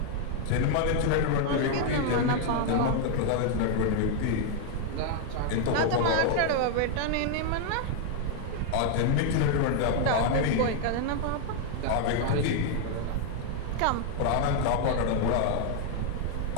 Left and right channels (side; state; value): both; different; correlation 0.00